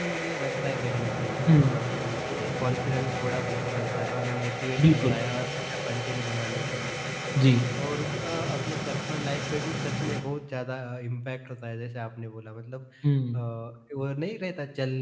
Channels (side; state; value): both; identical; correlation 1.00